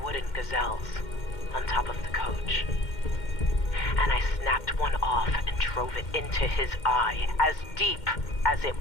wooden gazelles on top of the coach. And I snapped one off and drove it into his eye, as deep as it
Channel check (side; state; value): right; late; 2.1 ms